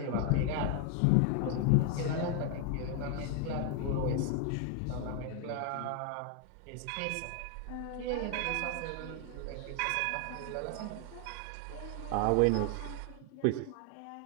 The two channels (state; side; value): different; both; correlation 0.00